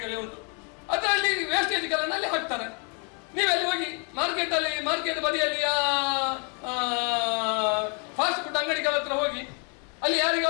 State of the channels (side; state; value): right; quieter; 37.4 dB